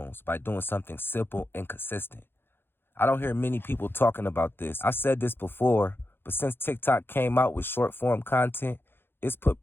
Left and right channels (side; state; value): right; late; 0.10 ms